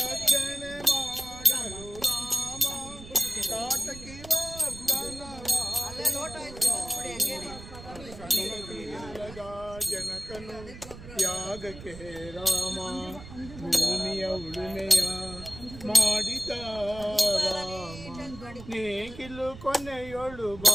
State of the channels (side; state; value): right; noise; rumble, 15 dB below the sound